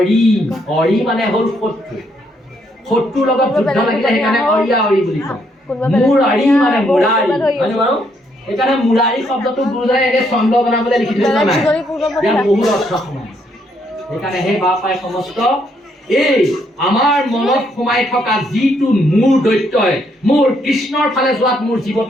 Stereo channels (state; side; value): normal; both; correlation 0.73